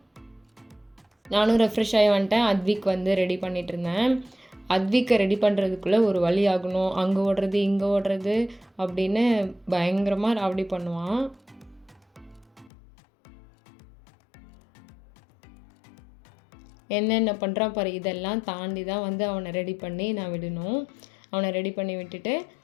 நானும் ரெஃப்ரெஷ் ஆகி வந்துட்டேன். அத்விக் ரெடி பண்ணிகிட்டு இருந்தேன். அத்விக்கை ரெடி பண்ணுறதுக்குள்ளே ஒரு வழி ஆகணும். அங்கே ஓடுறது இங்கே ஓடுறது அப்படின்னு பயங்கரமாக ராவடி பண்ணுவான். என்னென்ன பண்ணுறான் பாரு. இதெல்லாம் தாண்டி தான் அவனை ரெடி பண்ணி நான் விடணும். அவனை ரெடி பண்ணி விட்டுட்டு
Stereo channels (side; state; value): right; drops out; at 12.7 s